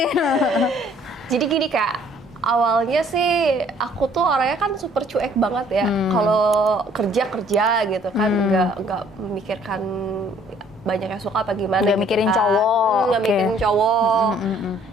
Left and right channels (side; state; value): both; normal; correlation 0.59